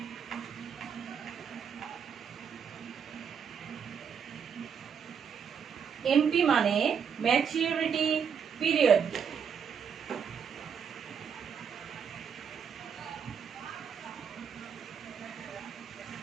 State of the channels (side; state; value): left; quieter; 7.2 dB